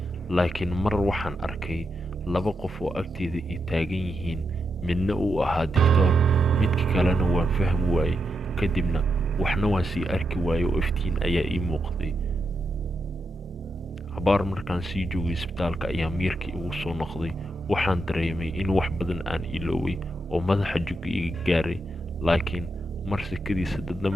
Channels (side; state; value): both; normal; correlation 0.84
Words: laakiin mar waxaan arkay laba qof oo agteeda ii taagan yihiin midna uu ahaa digtoor midka kalena waan fahmi waayey kadibna waxna waan sii arki waayey oo iftiin ayaa ii muuqday cabaar markaan sii joogay isbitaalka ayaa miirkii igu soo noqday waxaan dareemay in wax badan aan ilooway oo madaxa jugga iga gaaray laakiin mar sikadiisa dadna